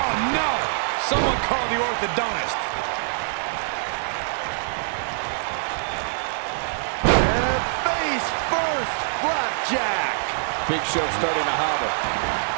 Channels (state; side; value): silent; left; 58 dB below the other